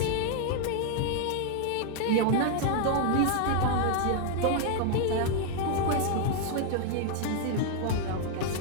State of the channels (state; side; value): different; both; correlation 0.00